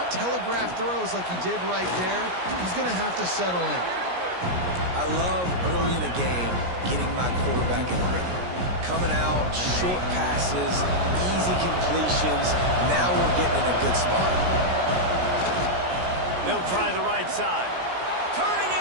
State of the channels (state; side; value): late; left; 17 ms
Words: telegraph throws like he did right there. He's going to have to settle in. I love early in the game getting my quarterback in a rhythm. Coming out, short passes, easy completions. Now we're getting in a good spot. They'll try the right side. Turning